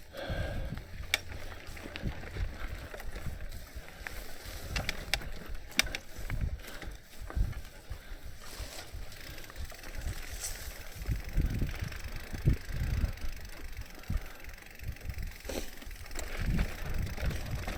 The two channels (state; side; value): identical; both; correlation 1.00